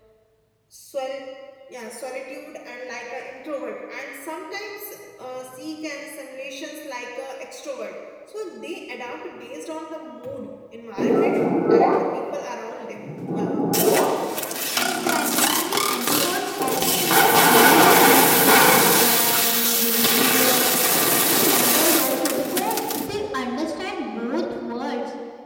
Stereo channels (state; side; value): identical; both; correlation 1.00